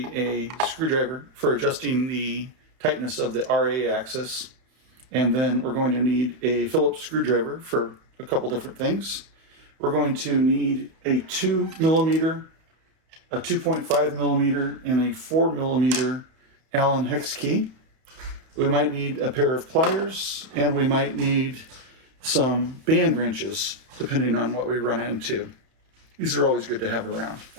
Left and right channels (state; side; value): late; left; 31 ms